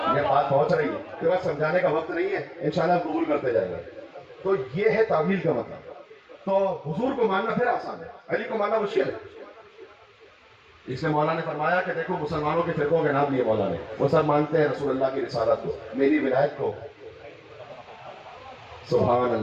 یہ بات پہنچ رہی ہے کہ بس سمجھانے کا وقت نہیں ہے، انشاءاللہ قبول کرتے جائیں گے، تو یہ ہے تعویل کا مطلب۔ تو حضور کو ماننا پھر آسان ہے، علی کو ماننا مشکل ہے، اس لیے مولا نے فرمایا کہ دیکھو مسلمانوں کے فرقوں کے نام لیے مولا نے، وہ سب مانتے ہیں رسول اللہ کی رسالت کو، میری ولایت کو، سبحان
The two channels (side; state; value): both; identical; correlation 1.00